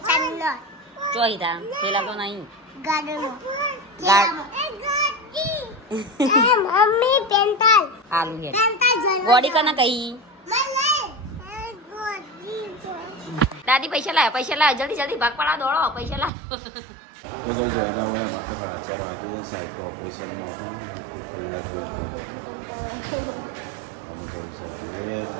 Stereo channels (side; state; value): left; drops out; at 16.3 s